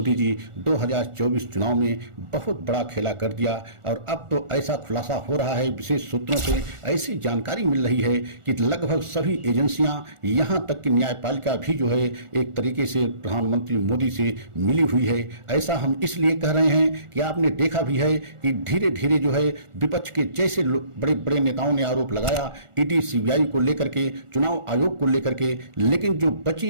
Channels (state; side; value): late; left; 1.4 ms